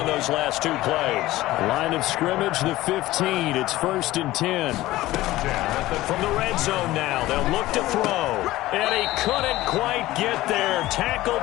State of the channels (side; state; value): right; quieter; 16.8 dB